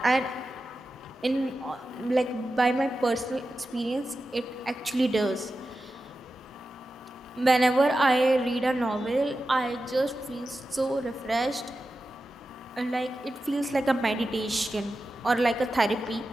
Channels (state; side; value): normal; both; correlation 0.92